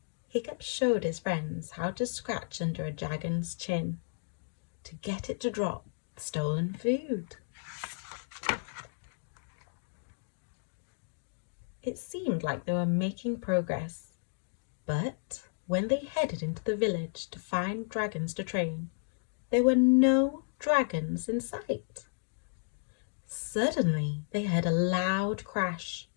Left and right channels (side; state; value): right; silent; digital silence